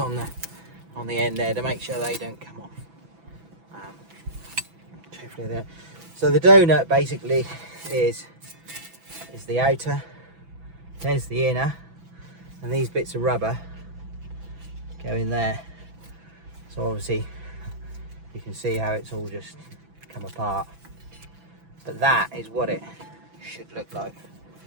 the end there to make sure they don't come off. Hopefully they don't. So the donut basically is the outer. There's the inner, and these bits of rubber go in there. So obviously you can see how it's all just come apart. But that is what it should look like.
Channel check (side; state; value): left; late; 6.0 ms